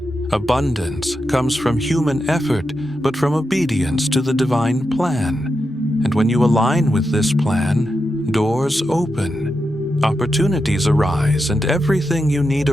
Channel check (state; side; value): normal; both; correlation 0.87